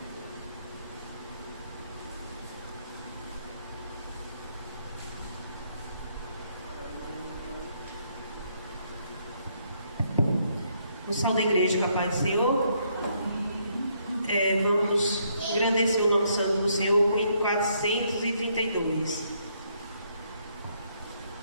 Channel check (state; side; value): inverted; both; correlation -0.72